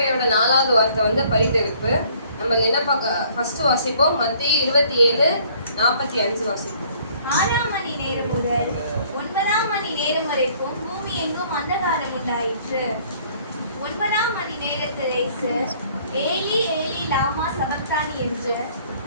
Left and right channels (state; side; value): inverted; both; correlation -0.59